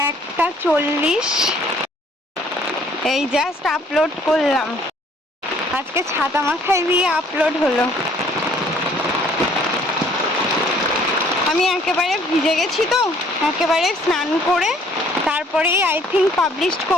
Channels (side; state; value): both; normal; correlation 0.60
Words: 40 এই জাস্ট আপলোড করলাম, আজকে ছাতা মাথায় দিয়ে আপলোড হলো। আমি একেবারে ভিজে গেছি তো, একেবারে স্নান করে তারপরেই আই থিঙ্ক পাবলিশ